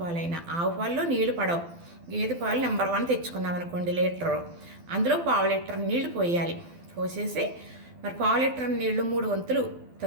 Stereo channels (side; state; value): left; late; 12 ms